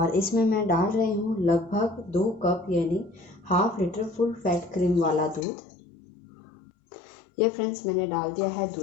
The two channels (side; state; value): right; drops out; at 5.4 s